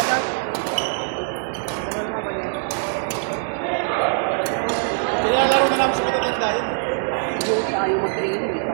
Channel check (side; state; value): left; silent; digital silence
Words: Nilalaro na namin sa matatanda yun. Jody, ayaw mag-training.